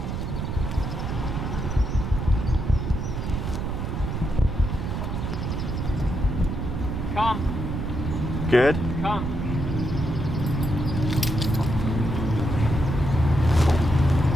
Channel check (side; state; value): right; noise; rumble, 3 dB below the sound